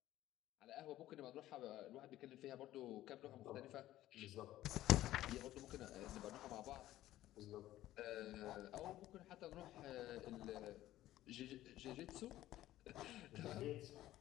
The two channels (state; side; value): quieter; right; 14.5 dB